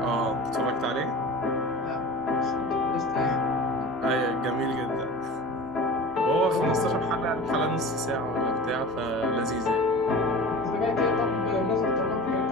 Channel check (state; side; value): noise; right; rumble, 28 dB below the sound